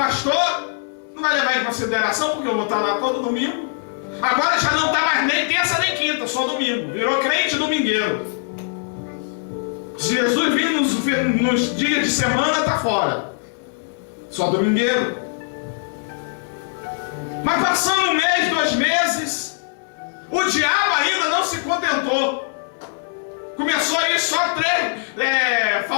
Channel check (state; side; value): silent; right; 65 dB below the other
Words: não vai levar em consideração porque eu vou estar lá todo domingo. Agora já não está mais nem terça nem quinta, só domingo. Virou crente domingueiro. Se Jesus vir nos dias de semana, está fora. Só domingueiro. Mas passando 1 mês, 2 meses, o diabo ainda não se contentou. Começou a ir só 3,